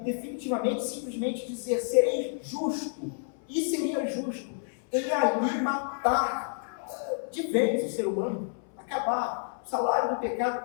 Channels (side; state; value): right; silent; 58 dB below the other